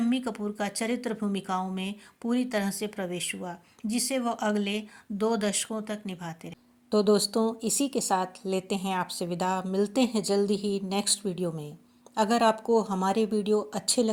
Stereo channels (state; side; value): identical; both; correlation 1.00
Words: कपूर का चरित्र भूमिकाओं में पूरी तरह से प्रवेश हुआ, जिसे वह अगले 2 दशकों तक निभाते रहे। तो दोस्तों, इसी के साथ लेते हैं आपसे विदा। मिलते हैं जल्दी ही नेक्स्ट वीडियो में। अगर आपको हमारे वीडियो अच्छे